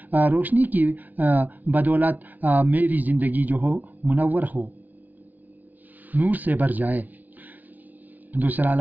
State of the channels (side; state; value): left; late; 0.080 ms